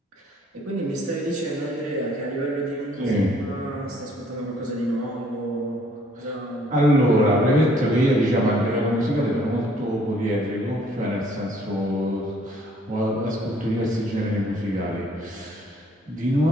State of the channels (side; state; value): both; normal; correlation 0.61